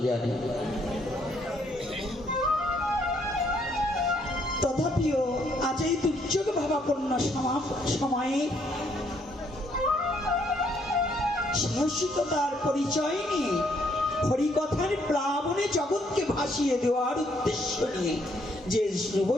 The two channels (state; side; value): normal; both; correlation 0.70